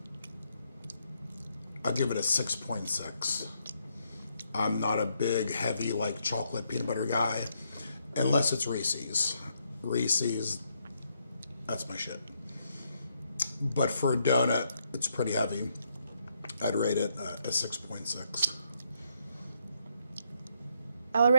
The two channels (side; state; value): both; inverted; correlation -0.76